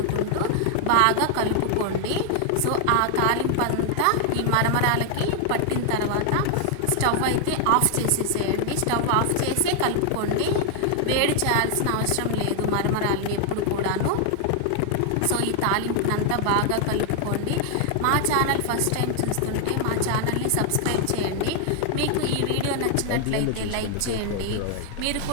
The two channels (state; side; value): different; both; correlation 0.00